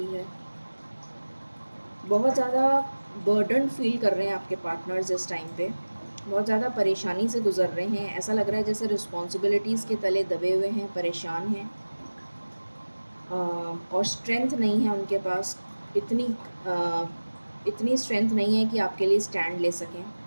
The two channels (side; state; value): both; inverted; correlation -1.00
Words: है। बहुत ज़्यादा बर्डन फील कर रहे हैं आपके पार्टनर्स इस टाइम पे, बहुत ज़्यादा परेशानी से गुजर रहे हैं। ऐसा लग रहा है जैसे रिस्पॉन्सिबिलिटीज़ के तले दबे हुए हैं, परेशान हैं, और स्ट्रेंथ नहीं है उनके पास। इतनी इतनी स्ट्रेंथ नहीं है कि आपके लिए स्टैंड ले सकें।